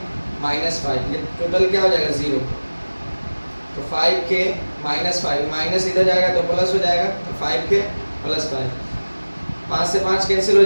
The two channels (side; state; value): both; inverted; correlation -1.00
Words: माइनस 5, ये टोटल क्या हो जाएगा 0, तो 5k माइनस 5, माइनस इधर जाएगा तो प्लस हो जाएगा, तो 5k प्लस 5, 5 से 5 कैंसिल हो